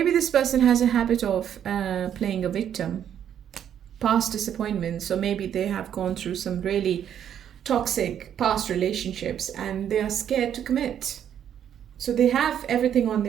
this person has a habit of playing a victim. Past disappointments. So maybe they have gone through some really toxic past relationships and they are scared to commit. So they have everything on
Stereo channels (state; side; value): quieter; left; 9.5 dB